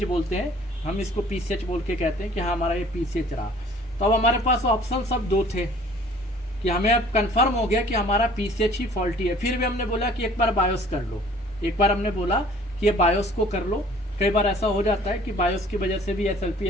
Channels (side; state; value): both; normal; correlation 0.53